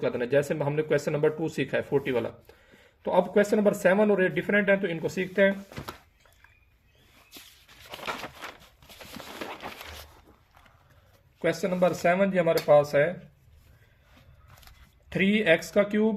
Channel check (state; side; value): identical; both; correlation 1.00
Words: कर देना, जैसे हमने क्वेश्चन नंबर 2 सीखा है 40 वाला। तो अब क्वेश्चन नंबर 7 और 8 डिफरेंट है, तो इनको सीखते हैं। क्वेश्चन नंबर 7 जी हमारे पास है 3x का